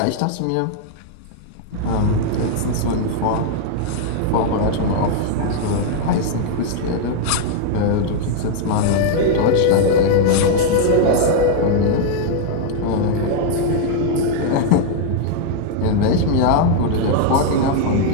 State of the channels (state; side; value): different; both; correlation 0.00